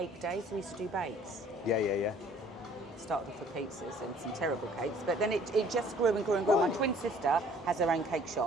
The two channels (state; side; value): normal; both; correlation 0.56